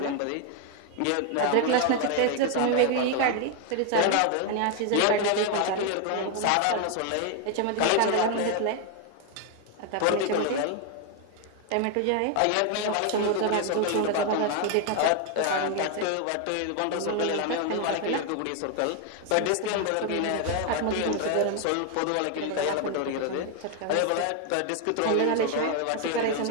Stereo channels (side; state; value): both; different; correlation 0.01